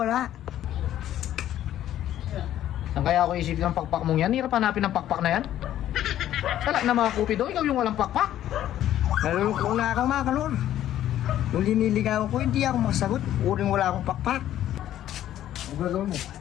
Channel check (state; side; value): quieter; right; 12.2 dB